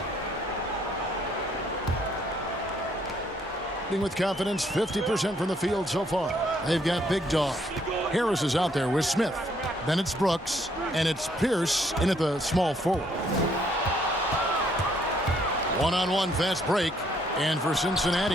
With confidence, 50% from the field so far. They've got Big Dog. Harris is out there with Smith. Then it's Brooks, and it's Pierce in at the small forward. One-on-one fast break, and for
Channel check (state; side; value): normal; both; correlation 0.68